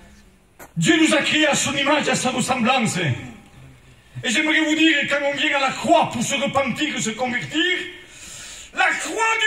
Dieu nous a créés à son image et à sa ressemblance. Et j'aimerais vous dire, quand on vient à la croix pour se repentir, se convertir, la croix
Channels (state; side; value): identical; both; correlation 1.00